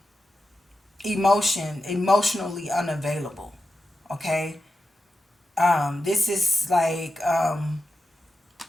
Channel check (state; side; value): normal; both; correlation 0.90